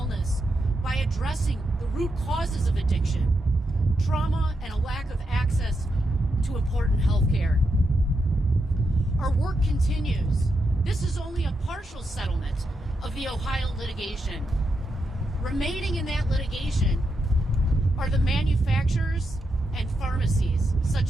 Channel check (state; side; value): normal; both; correlation 0.84